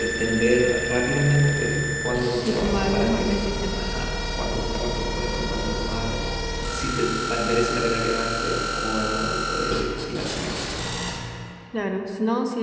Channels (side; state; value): both; identical; correlation 1.00